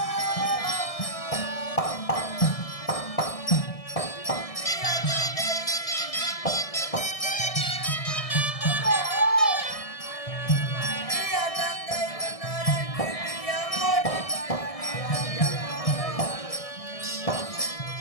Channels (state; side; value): late; right; 1.6 ms